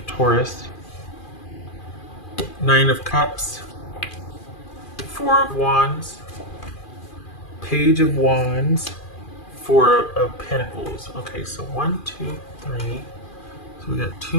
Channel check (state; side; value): late; right; 2.4 ms